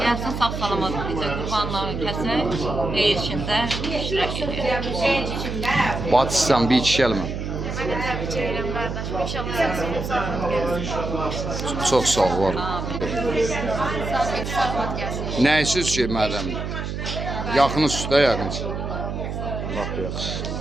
Gelsin sağ salamat bize kurbanlarını kesek, hayır içinde iştirak edelim. Batışsan bir iki gelme. Çok sağ ol, var. Nəyisiz ki, madem? Yaxın üstə, yaxın. Lap yaxşı.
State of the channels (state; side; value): noise; right; hum, 5 dB below the sound